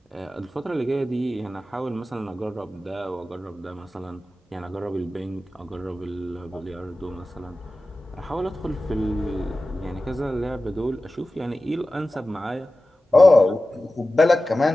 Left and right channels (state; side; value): normal; both; correlation 0.95